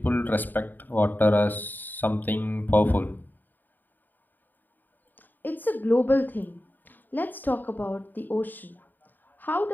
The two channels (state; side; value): late; right; 0.089 ms